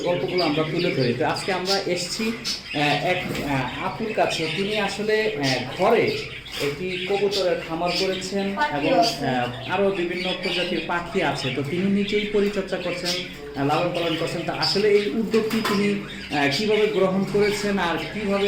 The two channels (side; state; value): both; identical; correlation 1.00